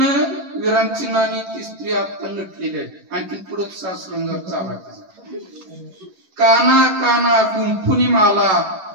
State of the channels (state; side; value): late; left; 11 ms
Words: विरामचिन्हांनी ती स्त्री आता नटलेली आहे. आणखी पुढे सासरंगार चालू आहे. काना काना गुंफुनी माला